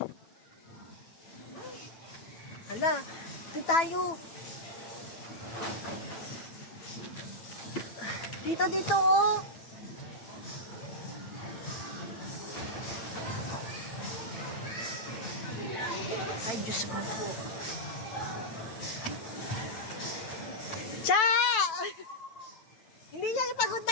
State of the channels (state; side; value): late; right; 9.2 ms